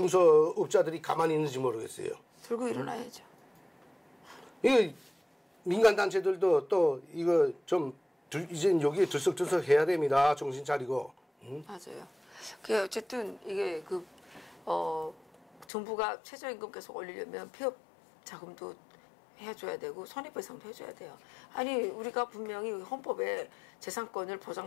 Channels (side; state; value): right; drops out; at 15.7 s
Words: 가만히 있는지 모르겠어요. 들고 일어나야죠. 이거 민간단체들도 또 이거 좀 이제 여기에 들썩들썩 해야 됩니다. 정신 차리고. 맞아요. 그 어쨌든 이게 정부가 최저임금 계속 올리려면 폐업 자금도 해줘야 되고 손해배상도 해줘야 돼요. 아니 우리가 분명히 헌법에 재산권을